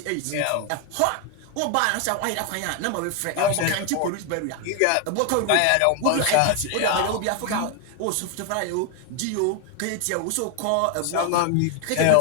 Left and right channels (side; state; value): both; different; correlation 0.01